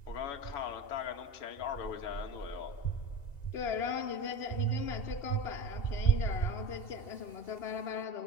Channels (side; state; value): right; late; 2.8 ms